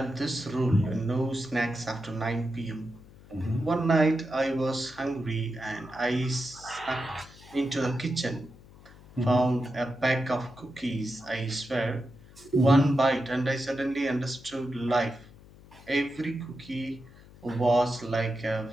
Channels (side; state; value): left; noise; hum, 22 dB below the sound